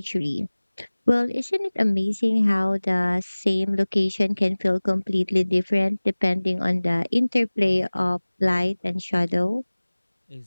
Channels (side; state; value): both; inverted; correlation -1.00